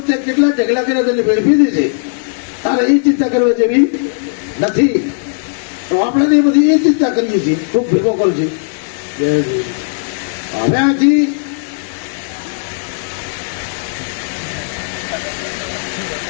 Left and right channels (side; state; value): right; silent; 55 dB below the other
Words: કેટલા ઢગલા કર્યા તેને ભેળ પી દેશે. તારે એ ચિંતા કરવા જેવી નથી. તો આપણે એ બધી એ ચિંતા કરીએ છીએ, ખૂબ ભેગો કરું છે. હવે આથી